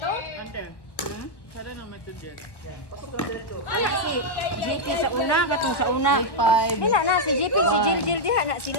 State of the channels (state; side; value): late; right; 1.1 ms